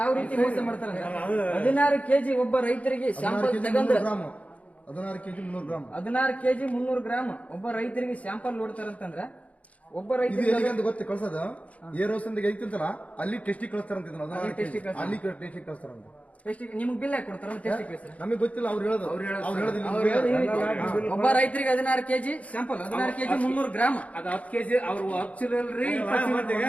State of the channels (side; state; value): right; late; 0.067 ms